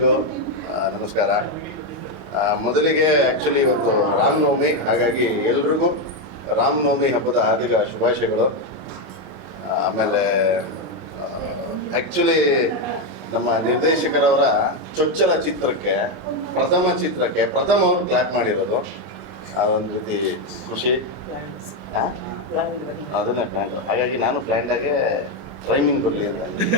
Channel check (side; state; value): both; normal; correlation 0.07